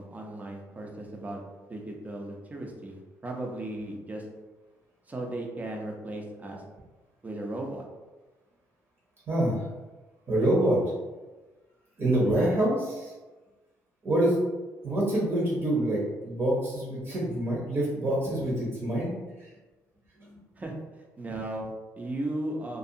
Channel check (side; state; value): both; normal; correlation 0.72